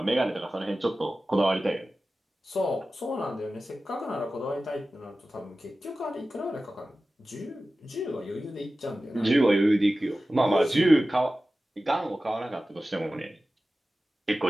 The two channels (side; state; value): both; normal; correlation 0.95